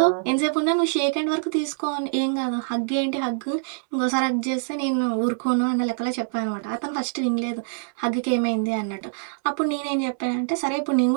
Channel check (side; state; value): left; silent; 62 dB below the other